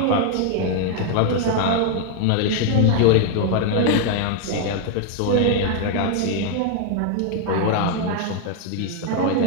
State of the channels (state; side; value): different; both; correlation 0.00